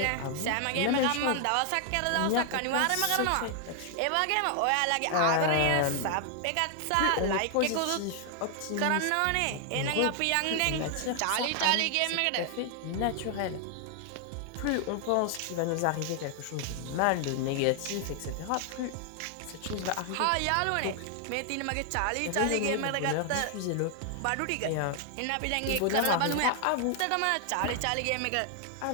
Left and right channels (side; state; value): both; different; correlation 0.00